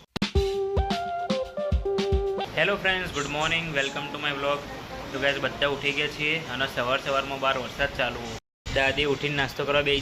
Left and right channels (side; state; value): both; identical; correlation 1.00